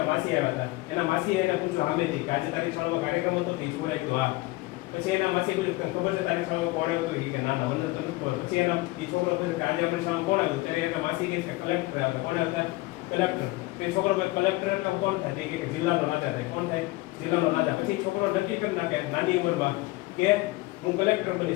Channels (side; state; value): right; quieter; 20.9 dB